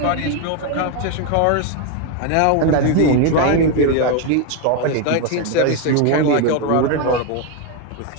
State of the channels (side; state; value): both; different; correlation 0.02